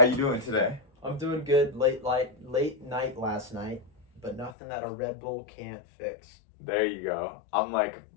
you doing today? I'm doing good. Late night last night, but nothing that a Red Bull can't fix. There you go. I'm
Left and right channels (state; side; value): drops out; right; at 4.5 s